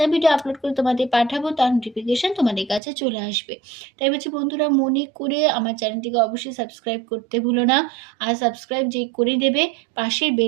ভিডিও আপলোড করে তোমাদের পাঠাবো তার নোটিফিকেশান তোমাদের কাছে চলে আসবে। তাই বলছি বন্ধুরা, মনে করে আমার চ্যানেলটিকে অবশ্যই সাবস্ক্রাইব করতে ভুলো না। আর সাবস্ক্রাইব যে করে দেবে, পাশের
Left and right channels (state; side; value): drops out; left; at 2.8 s